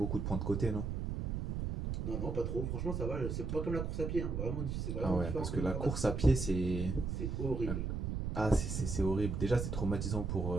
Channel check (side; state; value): right; noise; rumble, 2 dB below the sound